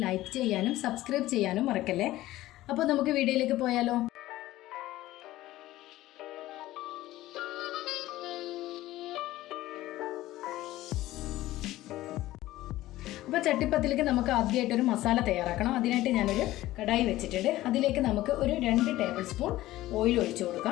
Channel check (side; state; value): right; quieter; 16.1 dB